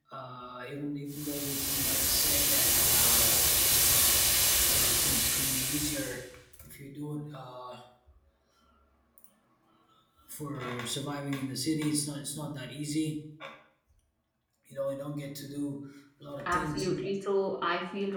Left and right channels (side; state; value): both; identical; correlation 1.00